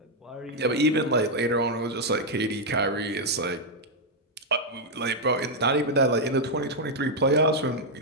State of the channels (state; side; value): normal; both; correlation -0.02